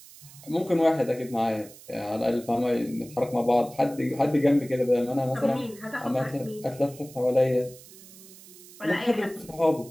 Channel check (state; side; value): noise; right; hiss, 20 dB below the sound